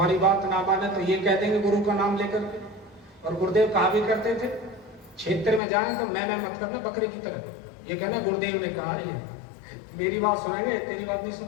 बात ना माने तो ये कह देंगे गुरु का नाम लेकर के। और गुरुदेव कहा भी करते थे, क्षेत्र में जाए तो मैं मत करना बकरे की तरह। ये कहना गुरुदेव ने कहा, ये मेरी बात सुनेंगे तेरी बात नहीं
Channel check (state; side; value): drops out; right; at 5.6 s